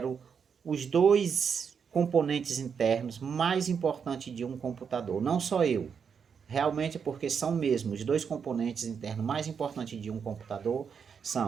os dois componentes internos mais importantes de um computador. Não só eu, realmente é porque são mesmo os dois componentes internos mais importantes de um computador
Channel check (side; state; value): left; quieter; 6.6 dB